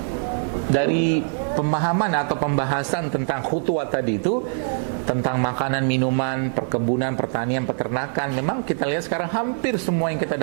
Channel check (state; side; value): silent; left; 63 dB below the other